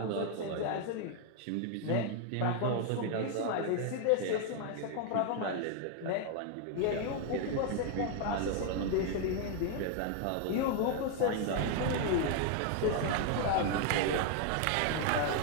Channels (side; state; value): both; different; correlation 0.00